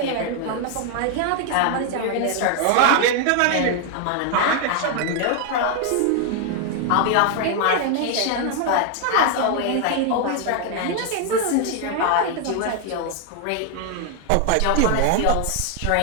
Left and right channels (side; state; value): both; different; correlation 0.00